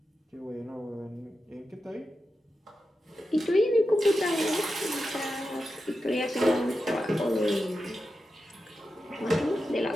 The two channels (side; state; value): both; normal; correlation 0.90